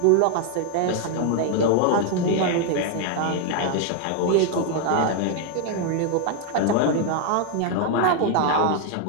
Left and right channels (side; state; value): both; different; correlation 0.00